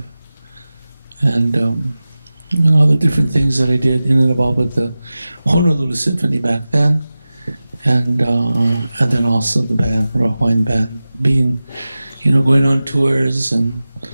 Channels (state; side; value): inverted; both; correlation -0.96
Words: And all the different things that I did in and about with the Honolulu Symphony back then. And then also the band, Hawaiian band, being, going on tours and